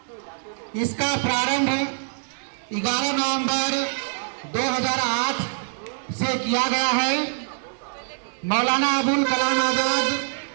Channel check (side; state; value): left; silent; 62 dB below the other